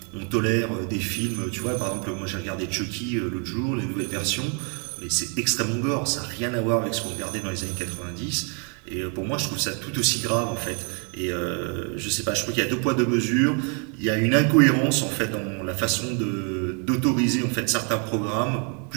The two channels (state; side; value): quieter; left; 38.2 dB